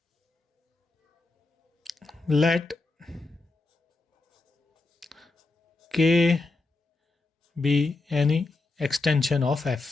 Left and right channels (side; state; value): right; quieter; 3.3 dB